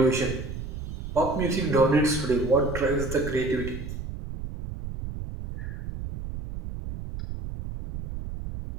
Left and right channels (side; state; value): right; noise; rumble, 8 dB below the sound